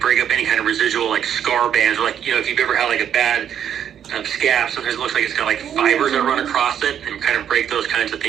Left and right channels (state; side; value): quieter; left; 9.3 dB